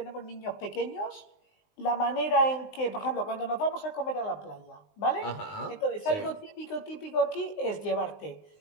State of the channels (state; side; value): late; right; 19 ms